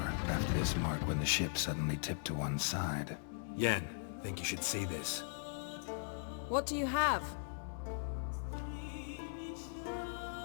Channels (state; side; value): silent; right; digital silence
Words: left this mark when the ship suddenly tipped to one side. Yen, think you should see this. What do you have?